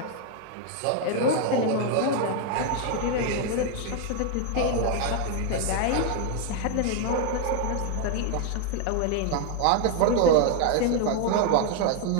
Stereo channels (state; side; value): different; both; correlation 0.01